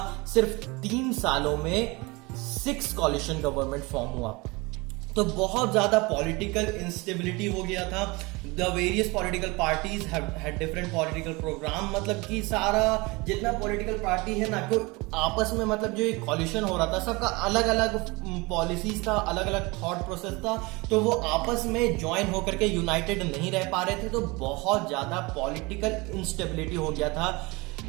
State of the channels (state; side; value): quieter; left; 24.8 dB